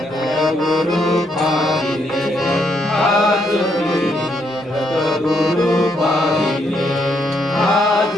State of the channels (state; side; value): normal; both; correlation 0.75